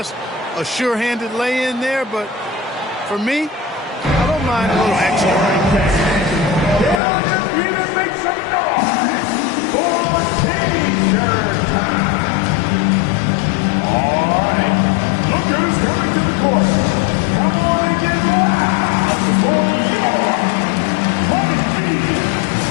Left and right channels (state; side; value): drops out; right; at 7.0 s